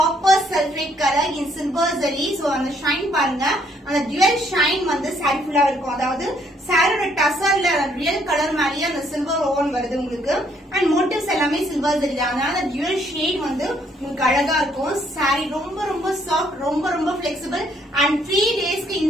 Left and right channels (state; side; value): normal; both; correlation 0.68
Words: சல்ஃபேட் கலர் இன் சில்வர் ஜரி. சோ அந்த ஷைன் பாருங்க, அந்த டுவல் ஷைன் வந்து சாரி ஃபுல்லா இருக்கும். அதாவது சாரியோட டசர்ல ரியல் கலர் மாதிரியே அந்த சில்வர் ஓவன் வருது உங்களுக்கு. அண்ட் மோட்டிவ்ஸ் எல்லாமே சில்வர் ஜரி தான். அதனால டுவல் ஷேட் வந்து உங்களுக்கு அழகா இருக்கும். சாரி ரொம்ப ரொம்ப சாஃப்ட், ரொம்ப ரொம்ப பிளெக்சிபிள். அண்ட் 3 டேஸ்க்கு